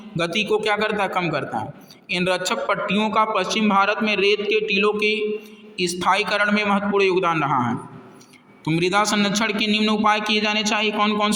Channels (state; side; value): identical; both; correlation 1.00